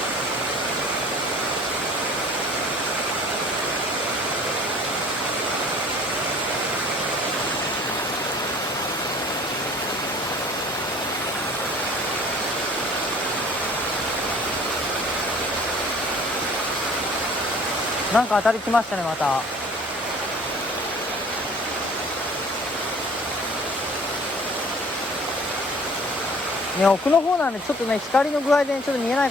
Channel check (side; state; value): both; normal; correlation 0.50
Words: なんか当たりきましたね、また。ね、奥の方なんでちょっとね、光の具合でちょっと見えない